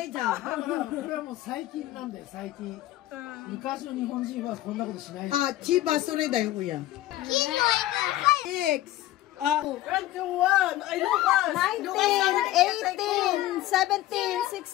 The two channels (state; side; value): quieter; right; 15.2 dB